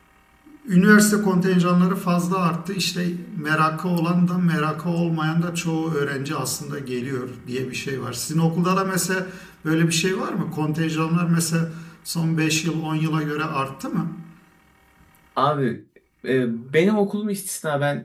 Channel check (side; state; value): both; identical; correlation 1.00